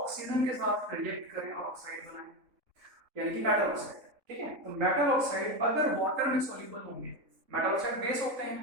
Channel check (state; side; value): late; left; 3.7 ms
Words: के साथ रिएक्ट करें और ऑक्साइड बनाएं, यानी कि मेटल ऑक्साइड, ठीक है। तो मेटल ऑक्साइड अगर वाटर में सॉल्युबल होंगे, मेटल ऑक्साइड बेस होते